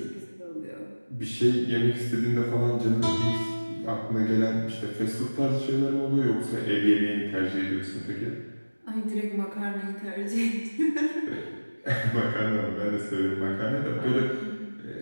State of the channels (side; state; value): both; inverted; correlation -1.00